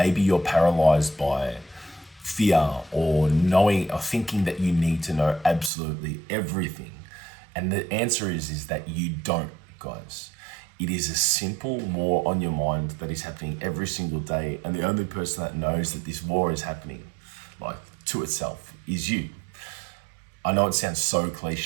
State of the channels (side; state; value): left; drops out; at 5.7 s